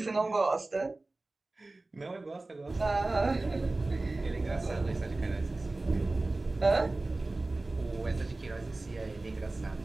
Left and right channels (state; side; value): quieter; left; 3.1 dB